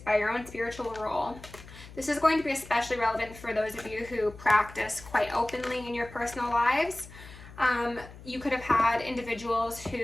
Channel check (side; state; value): left; noise; hum, 17 dB below the sound